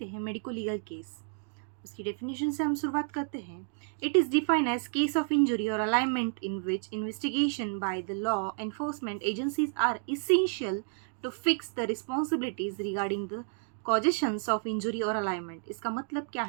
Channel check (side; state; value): left; silent; 57 dB below the other